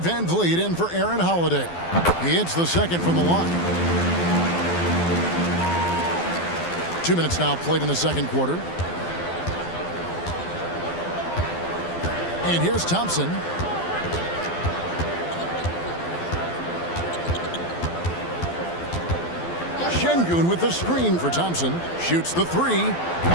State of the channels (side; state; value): right; late; 12 ms